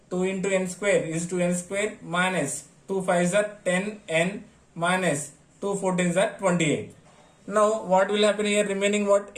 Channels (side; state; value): both; identical; correlation 1.00